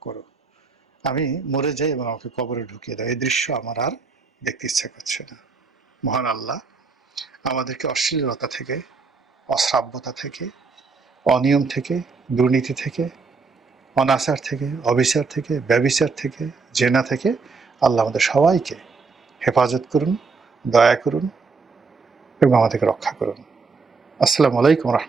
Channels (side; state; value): left; quieter; 4.6 dB